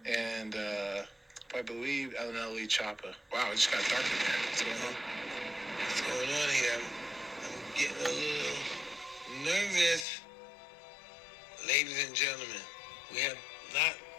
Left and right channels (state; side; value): drops out; right; at 10.1 s